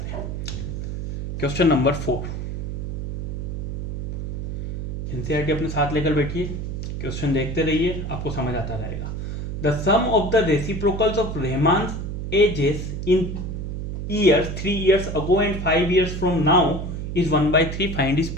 हैं। क्वेश्चन नंबर 4, एनसीईआरटी अपने साथ लेकर बैठिए, क्वेश्चन देखते रहिए, आपको समझ आता रहेगा। The sum of the reciprocals of Rahman ages in years 3 years ago and 5 years from now is 1/3, find is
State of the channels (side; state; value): right; noise; hum, 4 dB below the sound